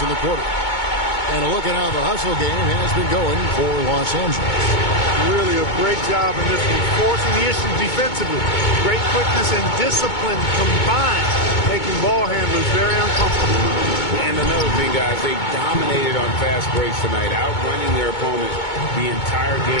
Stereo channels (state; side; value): late; right; 2.2 ms